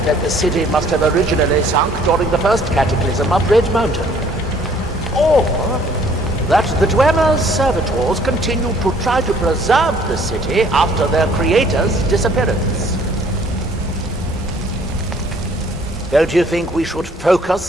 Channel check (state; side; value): normal; both; correlation 0.59